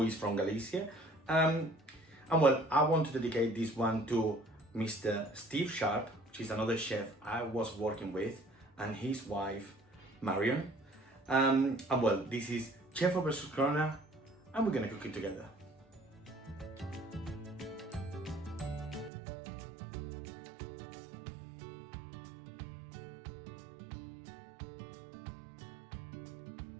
is from Galicia. And well, I want to dedicate this one to Mr. Steve Sharp, which is another chef I was working with, and his wife, Marion. And well, this is Chef versus Corona, and we're gonna cook it together.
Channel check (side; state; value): left; drops out; at 19.1 s